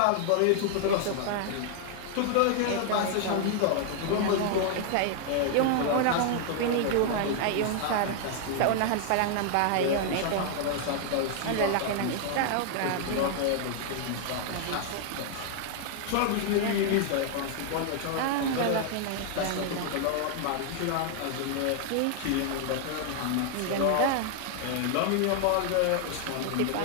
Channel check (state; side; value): different; both; correlation 0.00